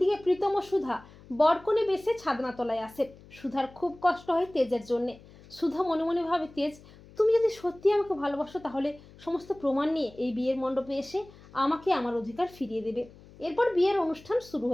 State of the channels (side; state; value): left; noise; hum, 22 dB below the sound